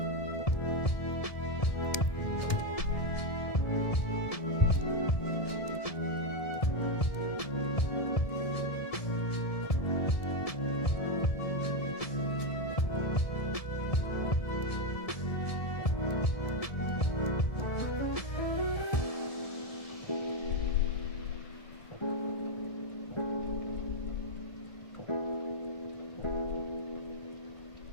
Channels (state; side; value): late; right; 1.7 ms